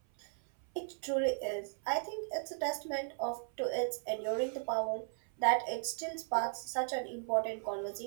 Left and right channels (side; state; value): left; silent; 54 dB below the other